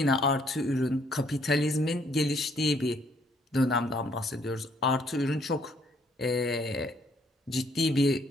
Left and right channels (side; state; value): both; normal; correlation 0.66